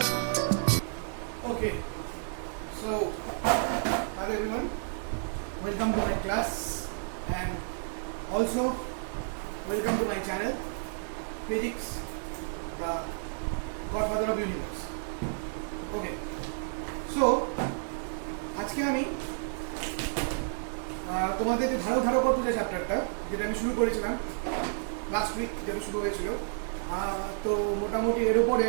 Okay, so hello everyone, welcome to my class and also welcome to my channel Physics, the Godfather of Universe. Okay, so আজকে আমি তোমাদের যে ধারকত্ব যে চ্যাপ্টারটা যেটা আমি শুরু করেছিলাম লাস্ট উইক, যেটা শুরু হয়েছিল, তো মোটামুটি এর উপরে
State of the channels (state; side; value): silent; left; digital silence